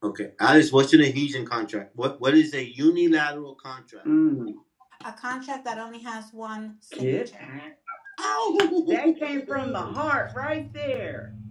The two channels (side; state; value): both; identical; correlation 1.00